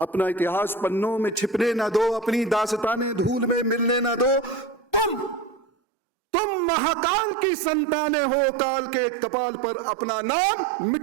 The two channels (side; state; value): left; drops out; at 5.7 s